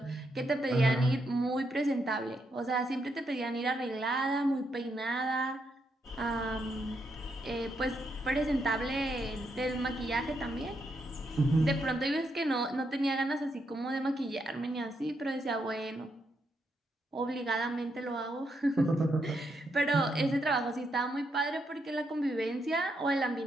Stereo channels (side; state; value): both; normal; correlation 0.79